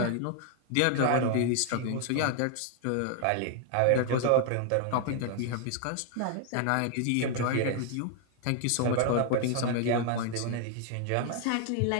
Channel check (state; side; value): different; both; correlation 0.00